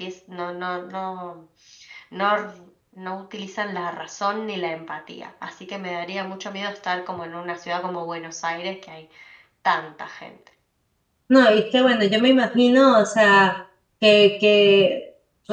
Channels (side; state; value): both; identical; correlation 1.00